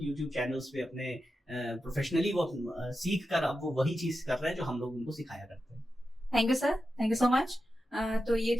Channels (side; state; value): both; normal; correlation 0.90